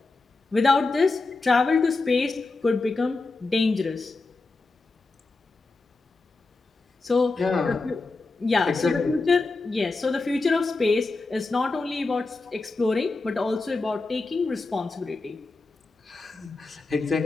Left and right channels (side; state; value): right; quieter; 3.6 dB